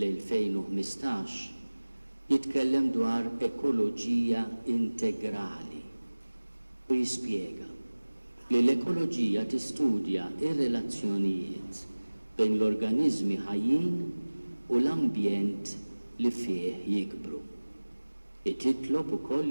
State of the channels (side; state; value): both; inverted; correlation -1.00